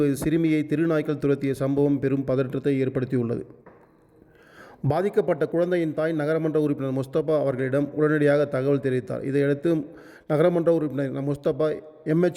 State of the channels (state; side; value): identical; both; correlation 1.00